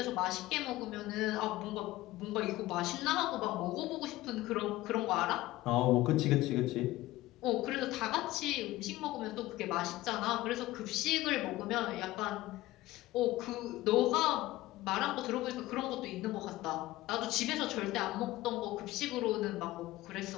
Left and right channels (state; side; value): quieter; right; 17.4 dB